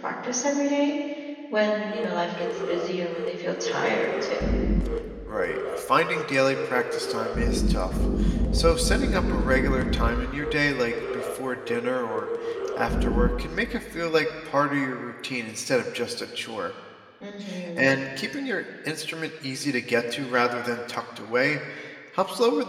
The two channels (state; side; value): identical; both; correlation 1.00